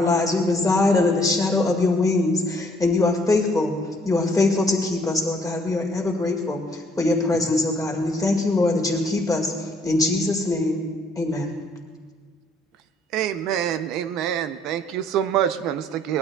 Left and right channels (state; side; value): normal; both; correlation 0.64